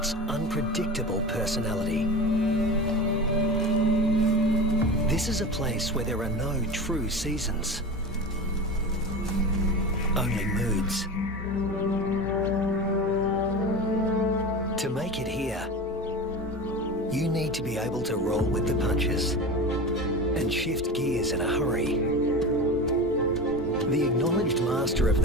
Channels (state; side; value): normal; both; correlation 0.28